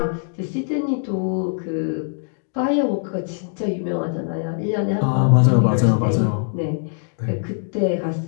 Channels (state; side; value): silent; right; digital silence